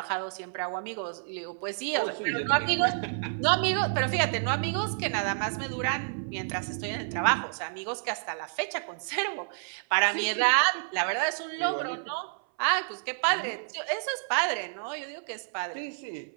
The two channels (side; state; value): left; silent; 56 dB below the other